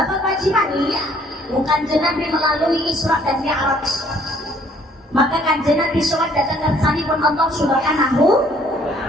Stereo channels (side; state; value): both; normal; correlation 0.61